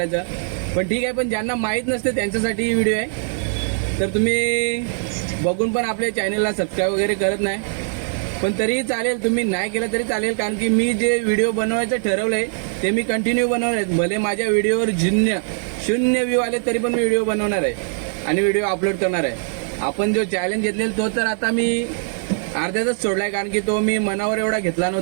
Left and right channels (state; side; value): silent; left; 63 dB below the other